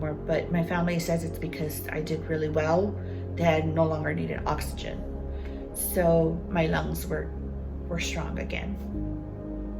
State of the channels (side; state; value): both; identical; correlation 1.00